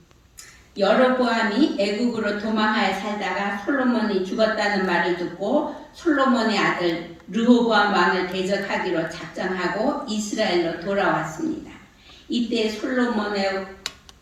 여로보암이 애굽으로 도망하여 살다가 솔로몬이 죽었다는 말을 듣고 솔로몬의 아들 르호보암 왕을 대적하기로 작정하고 이스라엘로 돌아왔습니다. 이때 솔로몬의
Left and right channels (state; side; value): identical; both; correlation 1.00